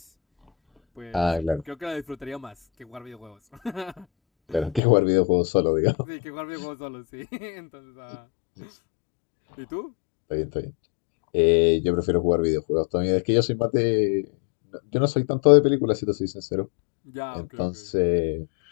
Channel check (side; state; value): right; drops out; at 4.8 s